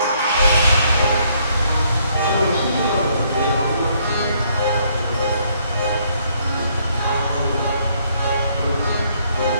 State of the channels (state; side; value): inverted; both; correlation -0.68